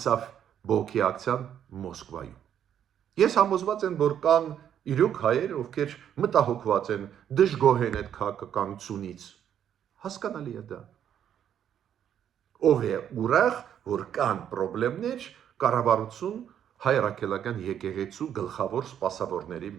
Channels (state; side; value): quieter; left; 9.5 dB